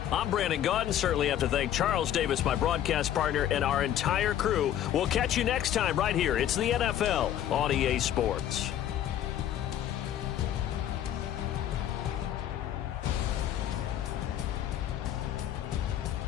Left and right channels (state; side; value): quieter; right; 11.1 dB